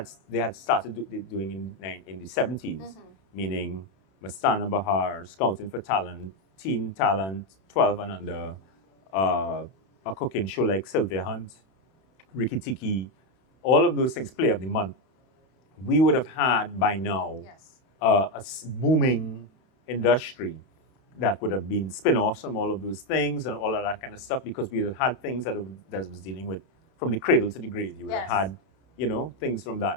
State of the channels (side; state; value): right; late; 31 ms